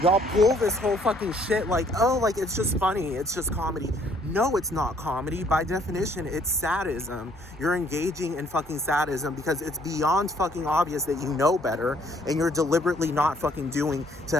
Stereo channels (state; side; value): normal; both; correlation 0.64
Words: y'all pull this whole fucking shit like, oh, like, it's just funny, it's just comedy. No, it's not comedy. By definition, it's sadism. You're engaging in fucking sadism because it's beyond fucking obvious that you know better and you're deliberately not fucking doing to